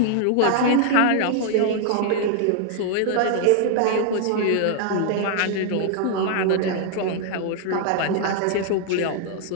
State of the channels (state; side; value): different; both; correlation 0.00